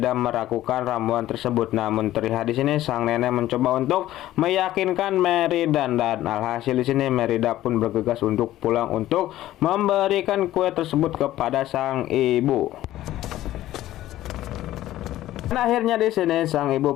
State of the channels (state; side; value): quieter; right; 14.3 dB